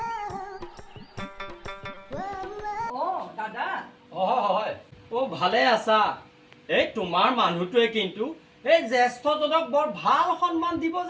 দাদা হয় ভালে আছা এই তোমাৰ মানুহটোৱে কিন্তু এই জ্যেষ্ঠজনক বৰ ভাল সন্মান দিব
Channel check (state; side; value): identical; both; correlation 1.00